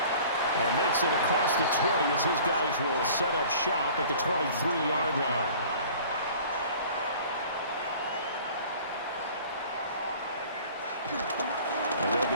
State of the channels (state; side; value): inverted; both; correlation -0.47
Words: And makes it across the 20 as his guys will set up shop at the 23-yard line. And